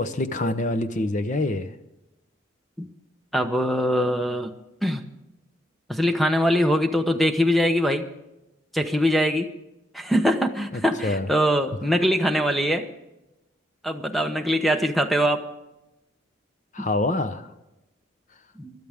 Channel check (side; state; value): both; normal; correlation 0.77